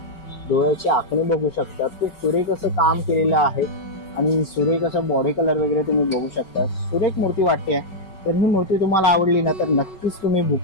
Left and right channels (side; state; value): right; late; 5.3 ms